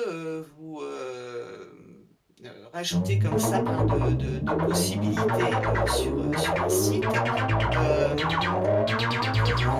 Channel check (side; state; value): both; identical; correlation 1.00